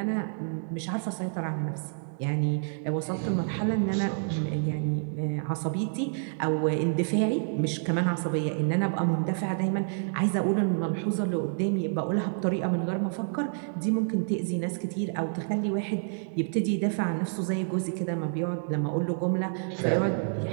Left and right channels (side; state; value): left; silent; digital silence